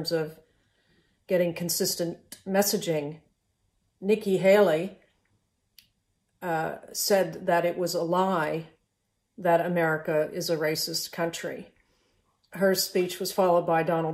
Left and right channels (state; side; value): identical; both; correlation 1.00